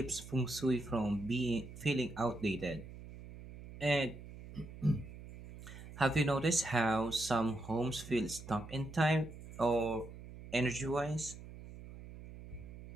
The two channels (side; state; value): right; noise; hum, 14 dB below the sound